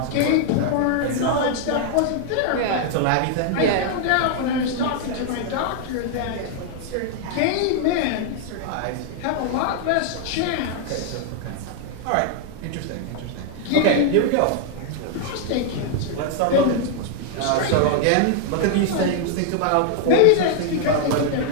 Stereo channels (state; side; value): different; both; correlation 0.00